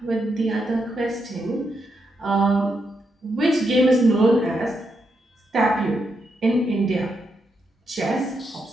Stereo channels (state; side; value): normal; both; correlation 0.81